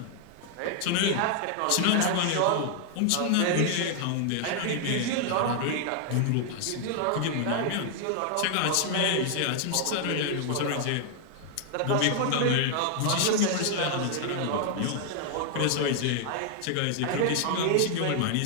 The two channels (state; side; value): different; both; correlation 0.00